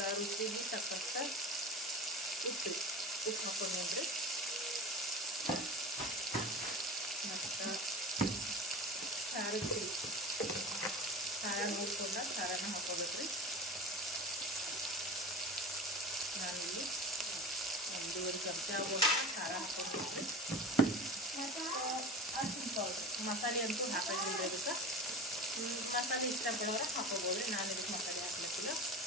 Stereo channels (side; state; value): both; normal; correlation 0.33